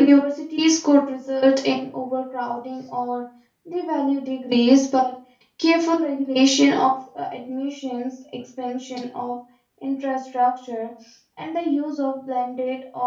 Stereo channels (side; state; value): both; identical; correlation 1.00